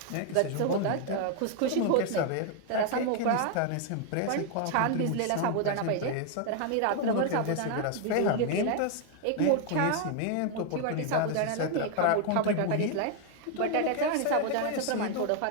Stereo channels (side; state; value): both; different; correlation 0.00